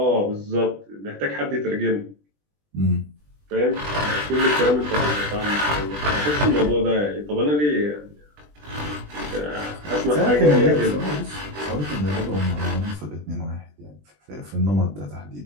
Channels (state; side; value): late; left; 20 ms